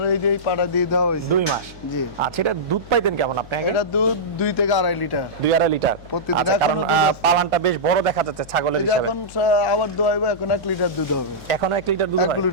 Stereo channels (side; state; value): left; noise; hum, 19 dB below the sound